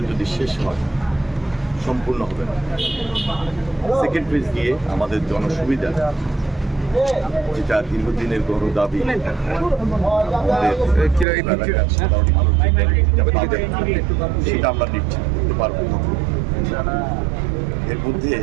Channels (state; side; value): drops out; left; at 11.2 s